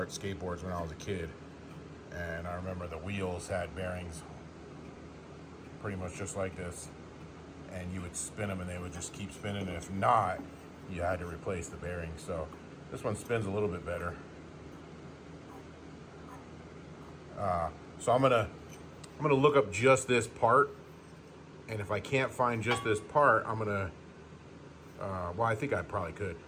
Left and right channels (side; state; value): both; identical; correlation 1.00